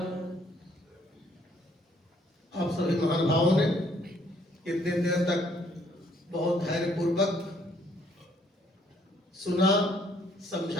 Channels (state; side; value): normal; both; correlation 0.65